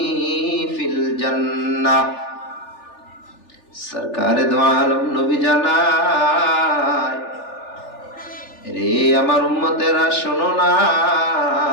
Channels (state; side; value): late; right; 3.4 ms